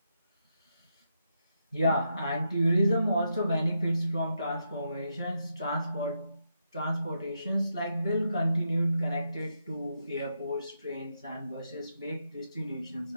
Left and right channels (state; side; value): inverted; both; correlation -0.82